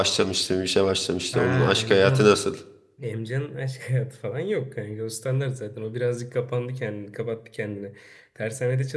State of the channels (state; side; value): identical; both; correlation 1.00